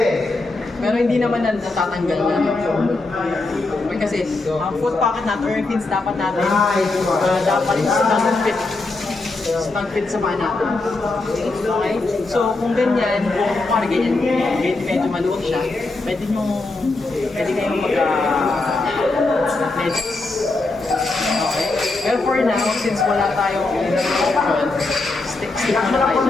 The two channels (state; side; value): quieter; right; 3.3 dB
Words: Pero hindi naman natatanggal na. Okay, kasi ang foot pocket natin or yung pins dapat natin, dapat snug fit sa paa natin. Okay? So kung ganyan, kung parang ganyan, medyo maluwag siya, pwede kayong mag-medyas. Okay? Pero for now, since wala tayong option, stick muna tayo Ano